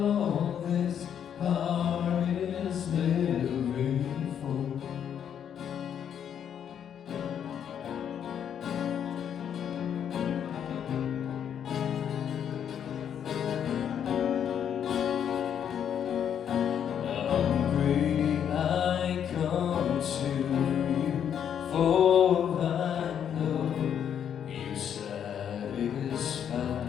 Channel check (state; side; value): quieter; right; 8.8 dB